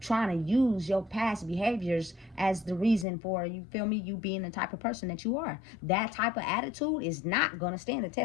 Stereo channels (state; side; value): drops out; right; at 3.1 s